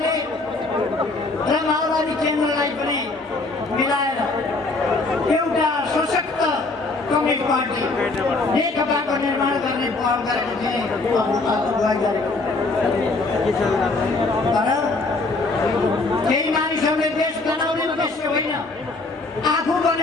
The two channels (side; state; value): right; quieter; 3.4 dB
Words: र माओवादी केन्द्रलाई पनि मिलाएर एउटा सशक्त कम्युनिस्ट पार्टी नेकपाको निर्माण गर्ने पहल गरेको थिए, अगुवाई गरेको। तर केही मानिसहरूले देश बनाउने उद्देश्य होइन, आफू